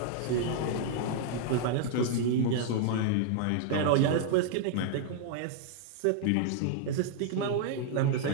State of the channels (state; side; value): different; both; correlation -0.01